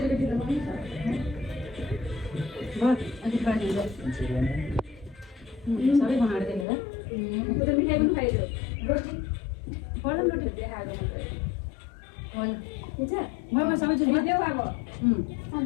त बस अनि पानी दे सबै बनाएर दिने ल उता मिठाई पनि खाइदियो रोटी बडा रोटी देखाएको होइन हुन्छ म सबै जुन देऊ अब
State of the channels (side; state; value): right; drops out; at 6.7 s